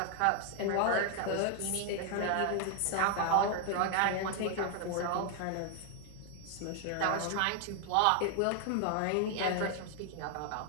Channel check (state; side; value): different; both; correlation 0.00